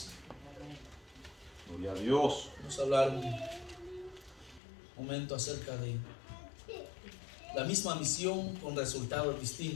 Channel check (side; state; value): right; drops out; at 4.6 s